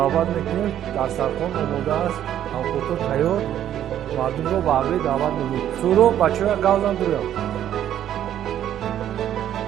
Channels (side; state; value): left; quieter; 11.0 dB